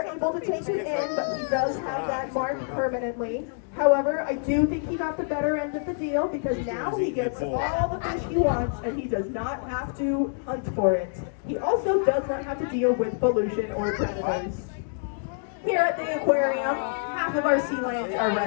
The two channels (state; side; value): silent; right; digital silence